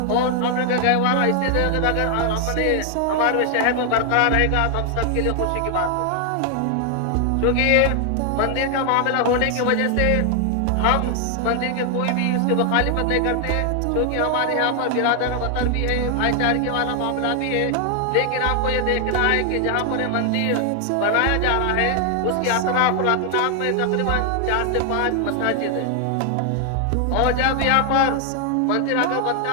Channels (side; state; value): both; different; correlation 0.00